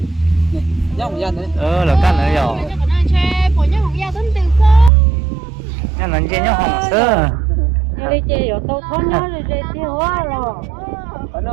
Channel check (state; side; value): drops out; left; at 4.9 s